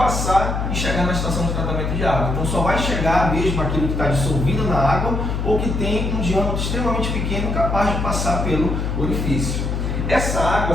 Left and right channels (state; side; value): noise; left; hum, 1 dB below the sound